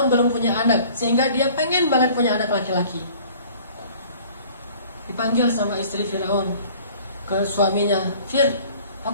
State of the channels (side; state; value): both; inverted; correlation -0.50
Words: belum punya anak, sehingga dia pengen banget punya anak laki-laki. Dipanggil sama istri Firaun ke suaminya, Fir,